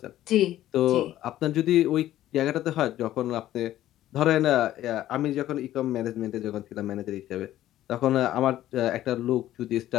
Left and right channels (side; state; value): right; quieter; 13.5 dB